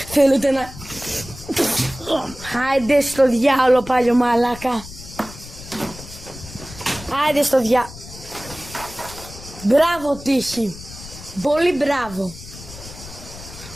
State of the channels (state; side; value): noise; left; rumble, 15 dB below the sound